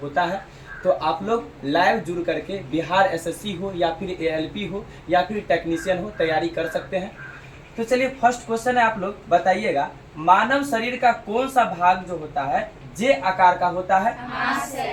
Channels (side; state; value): both; identical; correlation 1.00